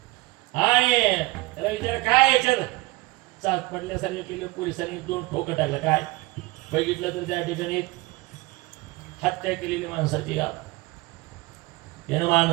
आणि त्याला विचार काय याच्यात चाच पडल्यासारखं केलं. पोलिसांनी 2 ठोकं टाकलं. काय बघितलं तर त्या ठिकाणी हत्या केलेली माणसाची यानं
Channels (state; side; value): quieter; left; 21.6 dB